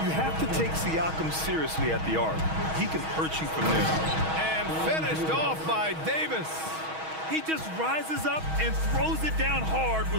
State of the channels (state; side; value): late; left; 6.3 ms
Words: You have to take Siakam seriously at the arc. He can hurt you from there. And finished off by Davis. He just rises up and throws it down hard